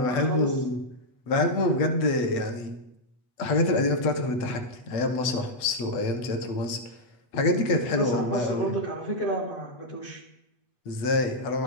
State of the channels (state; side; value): late; right; 8.2 ms